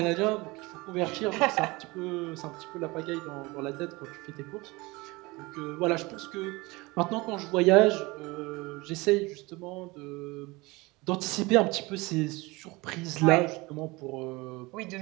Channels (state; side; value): quieter; left; 23.3 dB